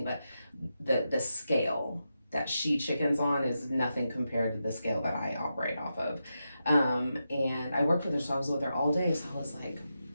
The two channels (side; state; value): both; inverted; correlation -0.88